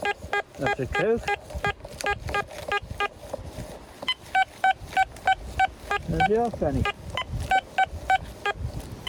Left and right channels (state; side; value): identical; both; correlation 1.00